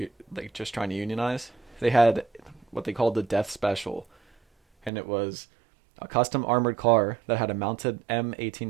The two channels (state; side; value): drops out; left; at 4.9 s